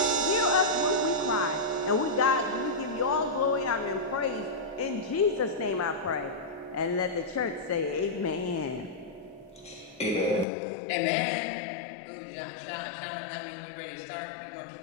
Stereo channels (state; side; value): drops out; right; at 10.5 s